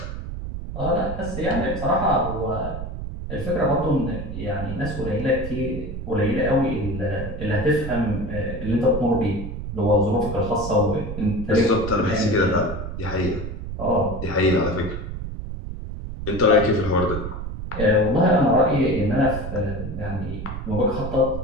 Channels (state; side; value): noise; right; rumble, 7 dB below the sound